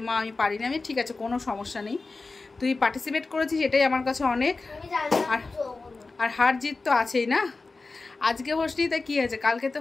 মা আমি পারিনি। আমি ঠিক আছে, কোনো সমস্যা নেই, তুই পার্টিসিপেট করেছিস এটাই আমার কাছে অনেক। আর হার জিত তো আছেই না। আজকে হোসনি তাই কি হয়েছে, কালকে তো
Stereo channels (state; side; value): quieter; right; 3.7 dB